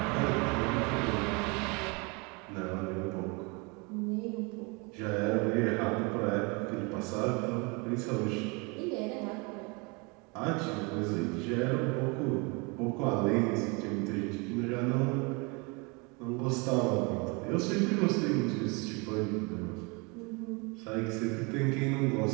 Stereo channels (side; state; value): left; quieter; 29.6 dB